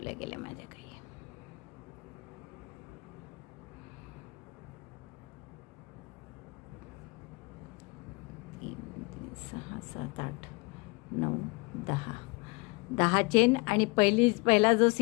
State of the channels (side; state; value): right; quieter; 28.1 dB